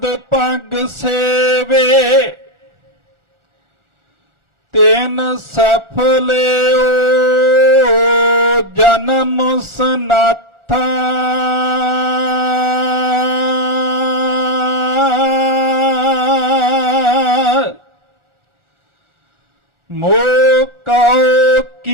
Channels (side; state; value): left; late; 1.4 ms